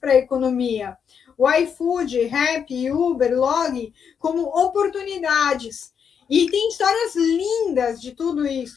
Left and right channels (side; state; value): right; quieter; 7.2 dB